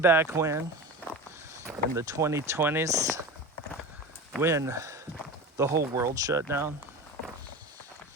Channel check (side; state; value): both; normal; correlation 0.30